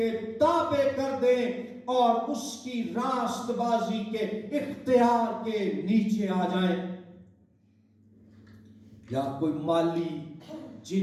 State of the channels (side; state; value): both; identical; correlation 1.00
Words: تابع کر دیں اور اس کی راست بازی کے اختیار کے نیچے آ جائیں، یا کوئی مالی،